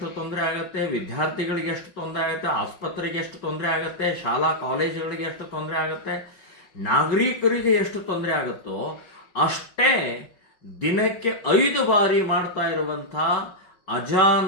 ತೊಂದರೆ ಆಗುತ್ತೆ, ವಿದ್ಯಾರ್ಥಿಗಳಿಗೆ ಎಷ್ಟು ತೊಂದರೆ ಆಗುತ್ತೆ, ಆಸ್ಪತ್ರೆಗೆ ಎಷ್ಟು ತೊಂದರೆ ಆಗುತ್ತೆ, ಶಾಲಾ ಕಾಲೇಜುಗಳಿಗೆ ಎಷ್ಟು ತೊಂದರೆ ಆಗುತ್ತೆ, ನಾಗರಿಕರಿಗೆ ಎಷ್ಟು ತೊಂದರೆ ಆಗುತ್ತೋ ಅಷ್ಟೇ ದಿನಕ್ಕೆ 5 ಬಾರಿ ಮಾಡ್ತಾ ಇರುವಂಥ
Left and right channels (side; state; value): right; late; 5.4 ms